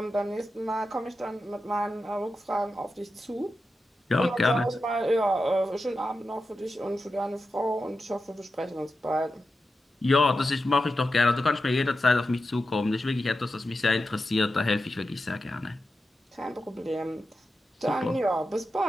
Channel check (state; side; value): normal; both; correlation 0.90